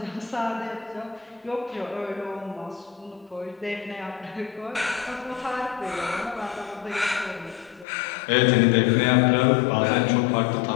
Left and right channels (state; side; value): drops out; right; at 7.9 s